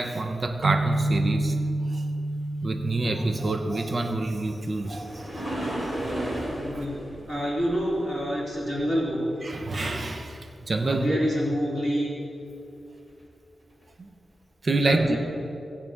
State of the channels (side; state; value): both; normal; correlation 0.91